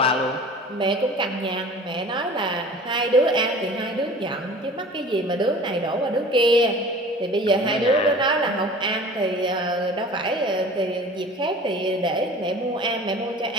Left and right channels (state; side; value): normal; both; correlation 0.43